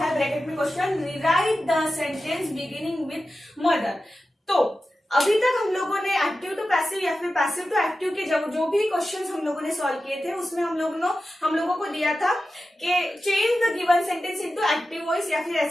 है ब्रैकेट में question, rewrite the sentence beginning with mother। तो अभी तक हम लोगों ने एक्टिव टू पैसिव या फिर पैसिव टू एक्टिव के जो भी क्वेश्चंस हम लोगों ने सॉल्व किए थे उसमें हम लोगों को दिया था कि change the given sentence into active voice, या फिर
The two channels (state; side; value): normal; both; correlation 0.93